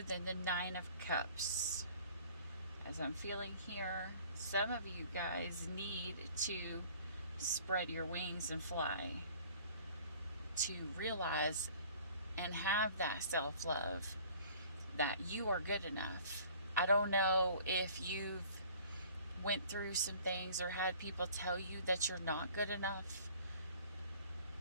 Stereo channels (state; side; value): inverted; both; correlation -0.51